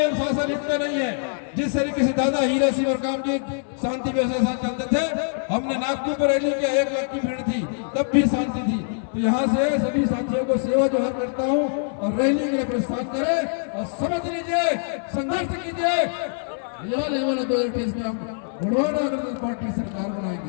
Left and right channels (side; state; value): right; silent; 63 dB below the other